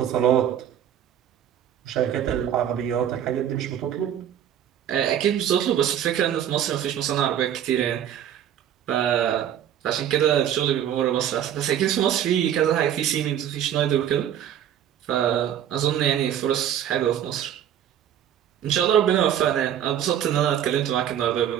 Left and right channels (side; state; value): left; quieter; 10.2 dB